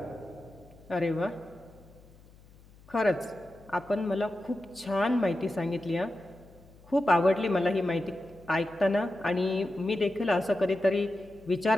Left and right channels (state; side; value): noise; left; hum, 25 dB below the sound